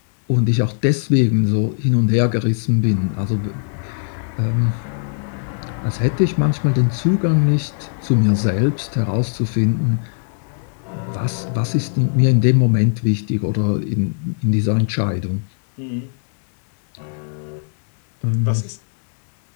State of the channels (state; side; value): silent; right; digital silence